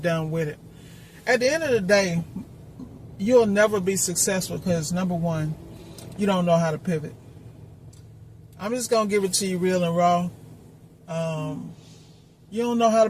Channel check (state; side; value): identical; both; correlation 1.00